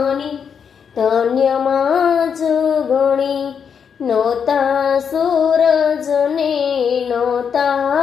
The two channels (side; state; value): right; quieter; 7.0 dB